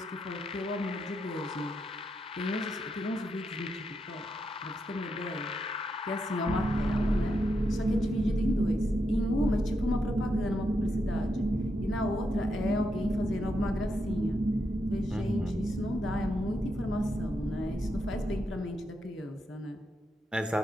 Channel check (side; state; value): both; normal; correlation 0.83